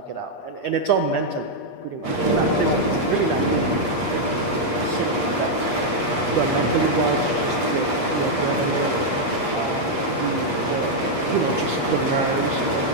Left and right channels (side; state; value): right; late; 8.4 ms